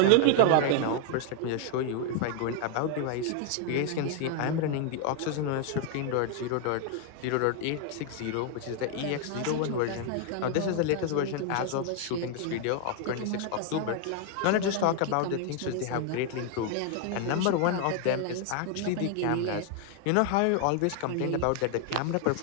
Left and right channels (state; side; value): different; both; correlation 0.00